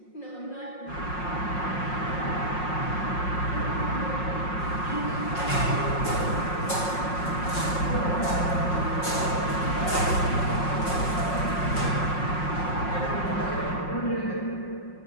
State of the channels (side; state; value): right; late; 5.5 ms